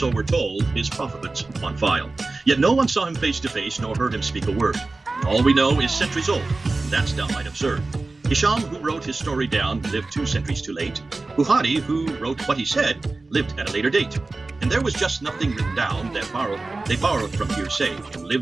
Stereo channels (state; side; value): quieter; left; 3.4 dB